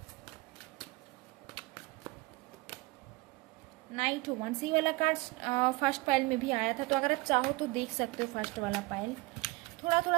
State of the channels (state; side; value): quieter; left; 22.6 dB